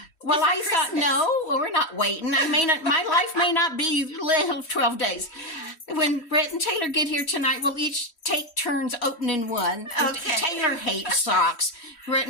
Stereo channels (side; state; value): right; late; 3.1 ms